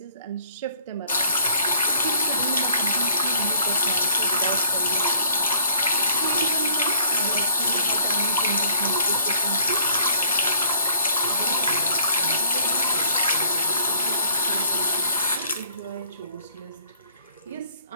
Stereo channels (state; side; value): inverted; both; correlation -0.58